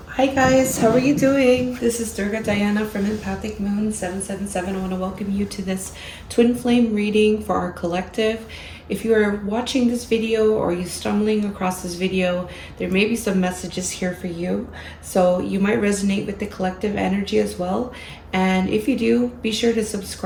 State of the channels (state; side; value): identical; both; correlation 1.00